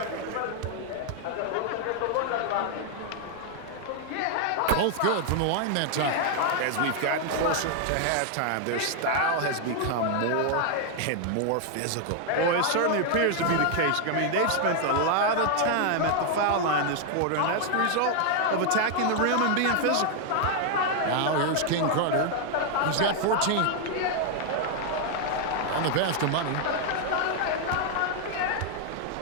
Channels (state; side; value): different; both; correlation 0.00